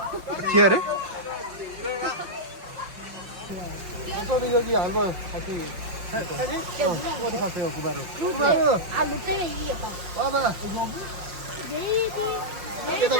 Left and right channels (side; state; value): left; late; 5.6 ms